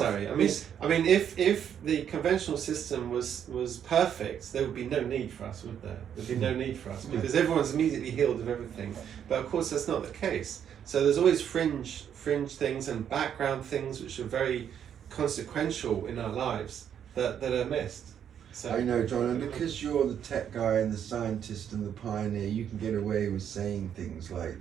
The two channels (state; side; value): quieter; left; 8.9 dB